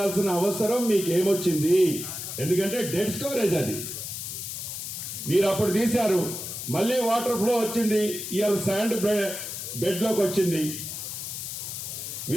అవసరం మీకు ఏమొచ్చింది? ఎందుకంటే డెడ్ స్టోరేజ్ అది. మీరు అప్పుడు తీశారు, మళ్ళీ వాటర్ ఫ్లో వచ్చింది, ఇవాళ శాండ్ బెడ్లోకి వచ్చింది.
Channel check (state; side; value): noise; left; hiss, 7 dB below the sound